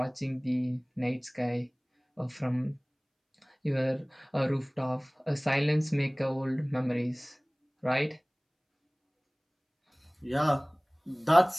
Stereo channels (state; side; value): identical; both; correlation 1.00